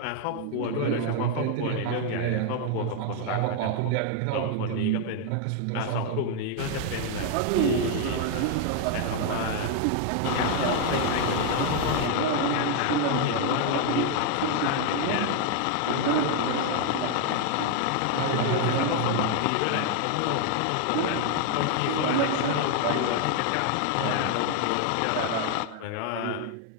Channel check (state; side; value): different; both; correlation 0.00